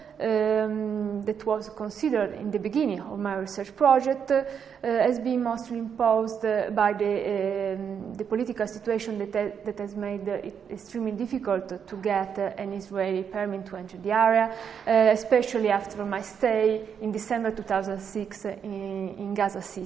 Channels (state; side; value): quieter; left; 7.4 dB